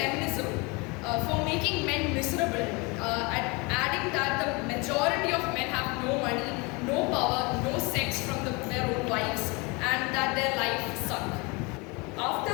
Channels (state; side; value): quieter; right; 27.8 dB